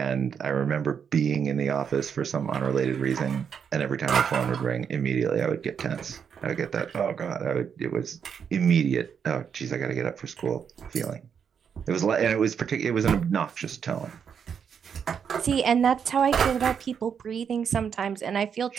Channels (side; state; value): left; quieter; 7.2 dB